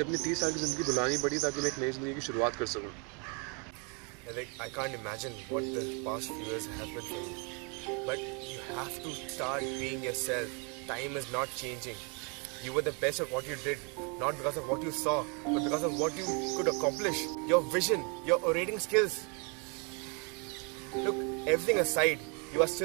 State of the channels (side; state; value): left; quieter; 34.5 dB